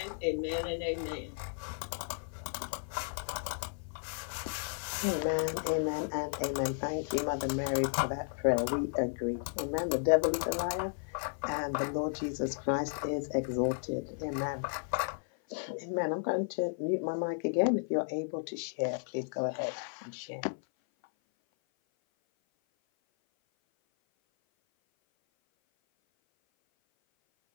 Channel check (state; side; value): silent; right; 55 dB below the other